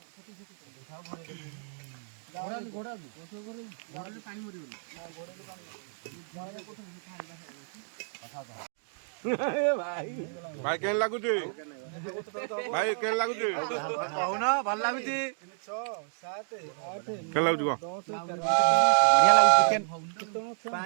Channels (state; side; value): silent; left; digital silence